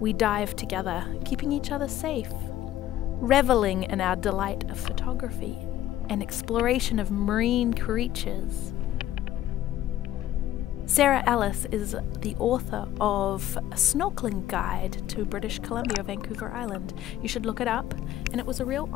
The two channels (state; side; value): quieter; right; 12.9 dB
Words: dive together, keeping each other safe, reveling in our delight of photography and exploration of marine creatures. Sarah Ellis is the author of a snorkeling guide to British Columbia, Vancouver Island. You should look it up, and it was a real